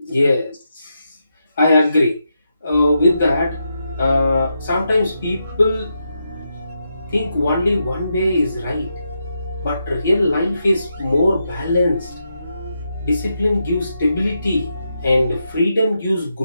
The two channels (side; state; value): both; inverted; correlation -0.84